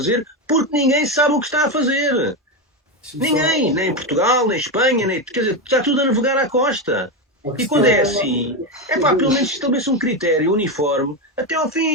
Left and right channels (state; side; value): normal; both; correlation 0.12